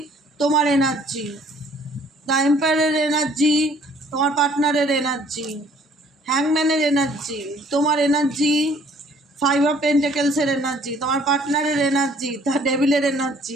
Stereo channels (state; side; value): normal; both; correlation 0.58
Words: তোমার এনার্জি। দ্য এম্পায়ারের এনার্জি, তোমার পার্টনারের এনার্জি। হ্যাংম্যানের এনার্জি, তোমার এনার্জি। 5 অফ পেন্টাকেলসের এনার্জি, তোমার পার্টনারের এনার্জি। দ্য ডেভিলের